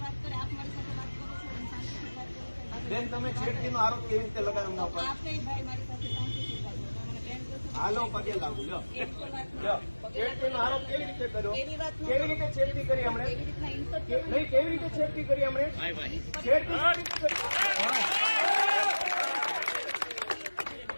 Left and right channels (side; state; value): both; inverted; correlation -1.00